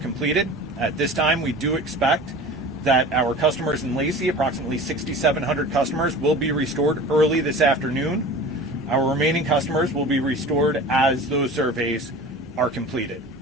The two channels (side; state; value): both; normal; correlation 0.38